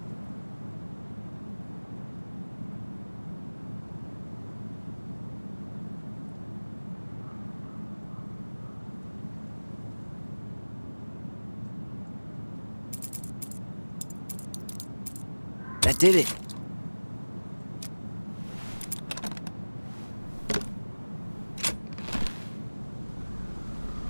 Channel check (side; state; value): both; inverted; correlation -1.00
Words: That did it.